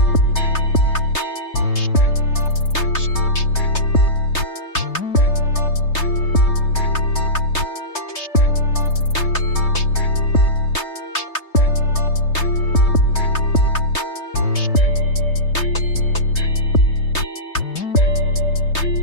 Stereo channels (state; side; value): late; right; 3.3 ms